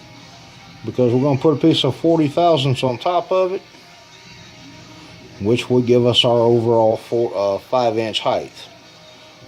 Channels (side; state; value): both; identical; correlation 1.00